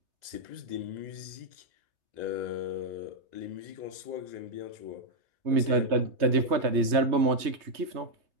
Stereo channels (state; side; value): late; left; 3.3 ms